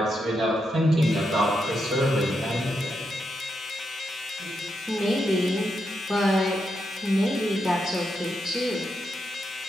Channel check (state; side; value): normal; both; correlation 0.83